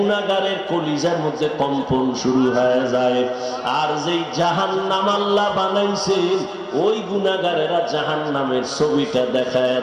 কলিজার মধ্যে কম্পন শুরু হয়ে যায়। আর যেই জাহান্নাম আল্লাহ বানাইছেন, ওই গুনাহগারেরা জাহান্নামের ছবিটা দেখায়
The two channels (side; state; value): both; identical; correlation 1.00